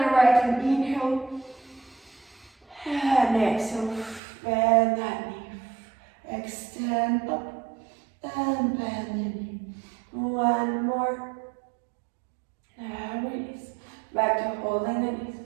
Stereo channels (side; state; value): left; drops out; at 4.2 s